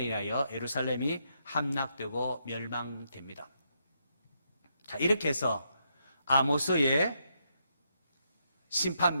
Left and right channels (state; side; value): inverted; both; correlation -0.79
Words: 의하여 예루살렘이 함락되고 멸망됩니다. 자, 이렇게 해서 아모스의 심판